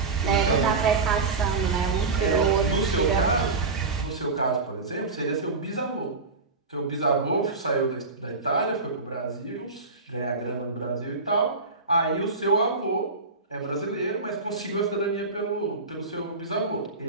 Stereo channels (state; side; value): quieter; left; 3.9 dB